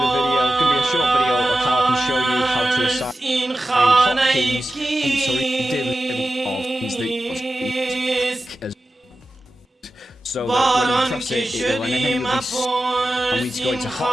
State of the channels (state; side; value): normal; both; correlation 0.93